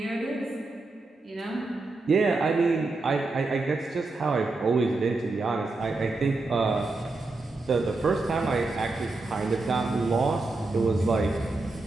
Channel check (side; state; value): left; quieter; 3.3 dB